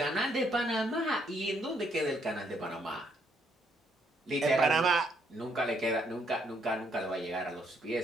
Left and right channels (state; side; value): normal; both; correlation 0.71